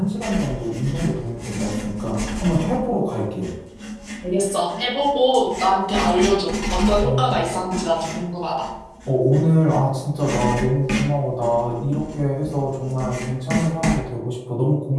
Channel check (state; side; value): identical; both; correlation 1.00